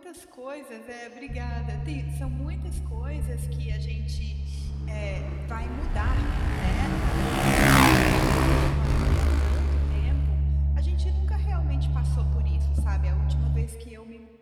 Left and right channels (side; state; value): both; identical; correlation 1.00